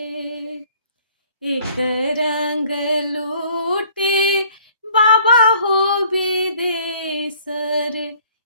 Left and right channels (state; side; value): inverted; both; correlation -0.57